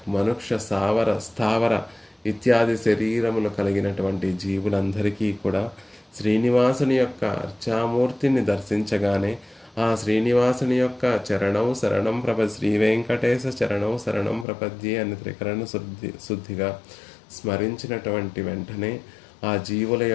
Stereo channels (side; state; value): right; drops out; at 14.5 s